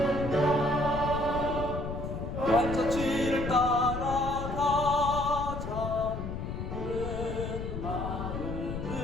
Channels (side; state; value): left; noise; rumble, 5 dB below the sound